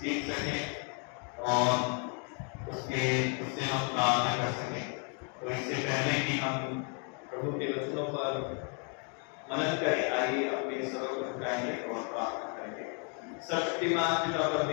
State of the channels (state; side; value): quieter; right; 39.7 dB